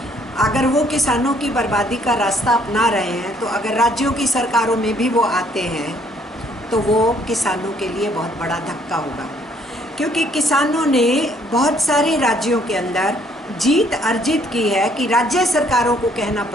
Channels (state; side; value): normal; both; correlation 0.65